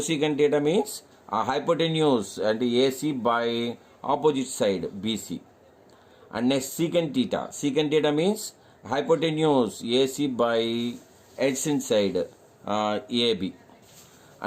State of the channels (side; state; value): both; identical; correlation 1.00